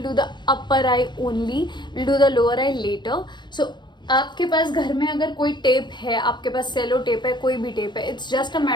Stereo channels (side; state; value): right; late; 0.22 ms